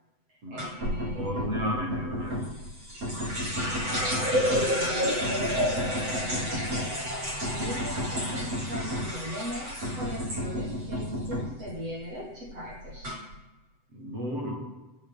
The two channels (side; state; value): left; late; 7.9 ms